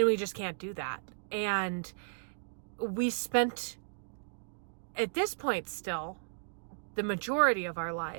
just can't do that. And we spent, at this point still, the majority of our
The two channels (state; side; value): silent; left; digital silence